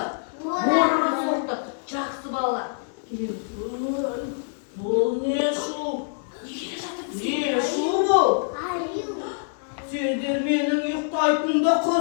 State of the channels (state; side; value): silent; right; digital silence